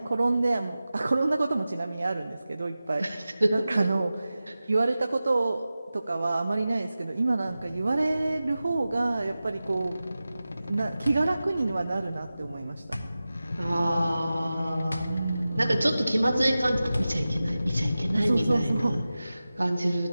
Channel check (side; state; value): both; inverted; correlation -0.95